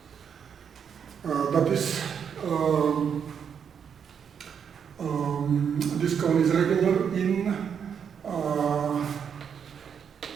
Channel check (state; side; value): quieter; left; 7.4 dB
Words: That is, this cone is regular in